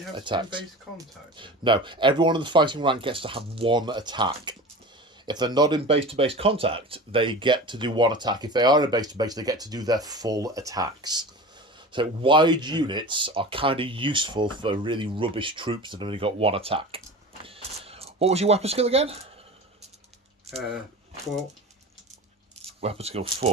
have attacks. team-based contact? No, everyone in the fighting rank gets to have one attack. If they're not in base-to-base contact, they get to do one attack. If they are in base-to-base, they get to do their full attacks. So wide units are kind of useful for really rubbish troops that have only got one attack. What was your weapon skill again? 4. Weapon skill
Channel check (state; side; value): normal; both; correlation 0.33